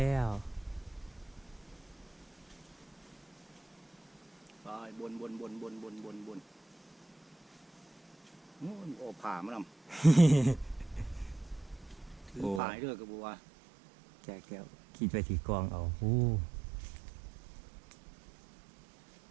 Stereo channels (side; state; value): left; drops out; at 12.6 s